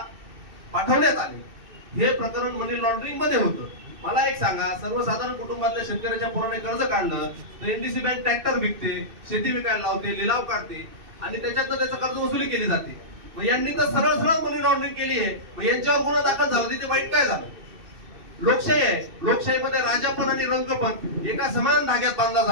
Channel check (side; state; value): left; late; 2.6 ms